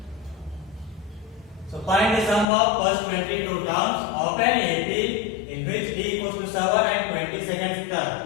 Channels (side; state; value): right; drops out; at 2.5 s